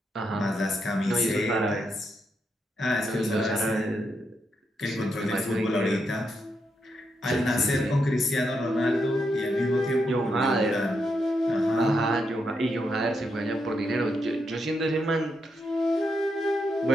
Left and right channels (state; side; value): normal; both; correlation 0.82